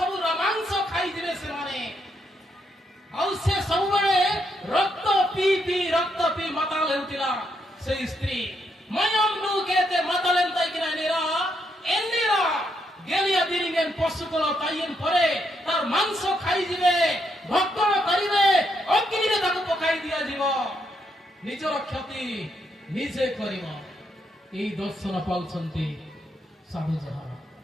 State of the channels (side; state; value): both; normal; correlation 0.77